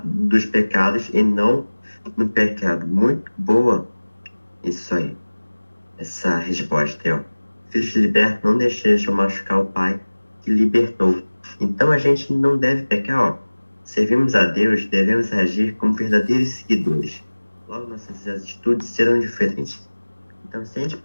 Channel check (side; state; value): both; inverted; correlation -1.00